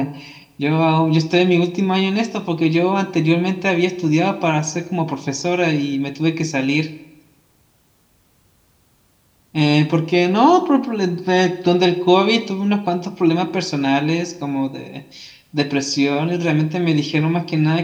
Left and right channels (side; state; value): both; identical; correlation 1.00